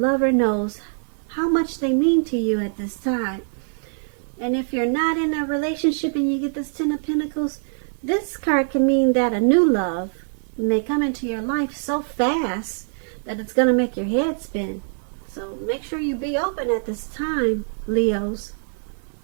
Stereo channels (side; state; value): left; silent; digital silence